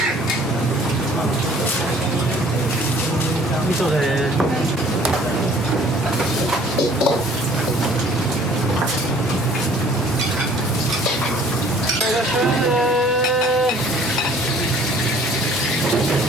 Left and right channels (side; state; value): both; normal; correlation 0.54